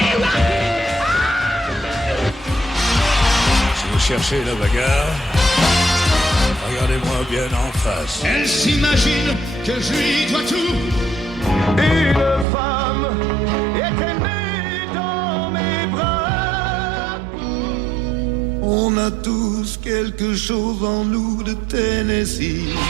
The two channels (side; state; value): left; drops out; at 12.5 s